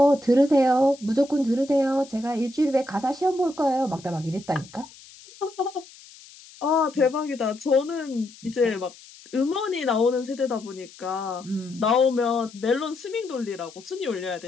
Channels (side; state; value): left; noise; hiss, 21 dB below the sound